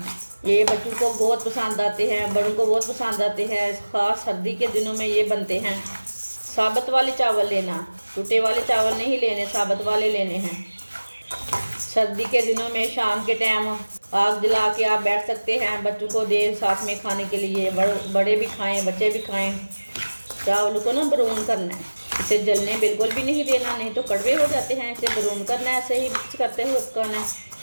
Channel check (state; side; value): inverted; both; correlation -1.00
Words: ये बच्चों को बहुत पसंद आते हैं, बड़ों को बहुत पसंद आते हैं। खास सर्दी के दिनों में ये बनते हैं। साबुत वाले चावल लेना, टूटे वाले चावल नहीं लेने, साबुत वाले लेने हैं। सर्दी के दिनों में शाम के टाइम आग जला के आप बैठ सकते हैं, बच्चों को दे साथ में खाने के लिए। बड़े भी खाएं, बच्चे भी खाएं। चावलों को ना ब्राउन करना है, इसे जलने बिल्कुल भी नहीं देना, नहीं तो कड़वे हो जाते हैं। इसे ब्राउन करना है, ऐसे ही मिक्स करते हुए पकाना है,